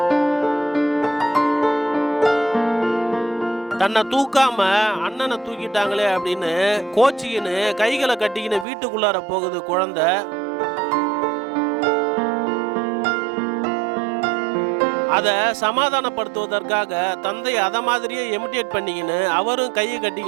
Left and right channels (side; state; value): left; drops out; at 8.7 s